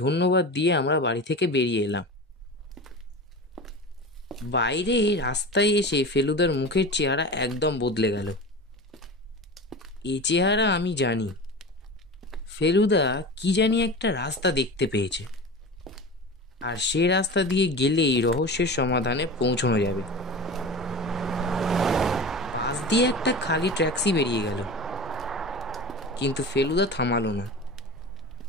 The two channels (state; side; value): normal; both; correlation 0.31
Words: দিয়ে আমরা বাড়ি থেকে বেরিয়ে এলাম। বাইরে রাস্তায় এসে ফেলুদার মুখের চেহারা একদম বদলে গেল। এ চেহারা আমি জানি। ফেলুদা কি জানি একটা রাস্তা দেখতে পেয়েছে, আর সে রাস্তা দিয়ে গেলেই রহস্যের সমাধানে পৌঁছানো যাবে। পাশ দিয়ে একটা খালি ট্যাক্সি বেরিয়ে গেল, কিন্তু ফেলুদা থামালো না।